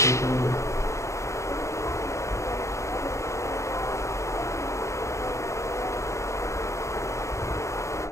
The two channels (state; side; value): late; right; 0.14 ms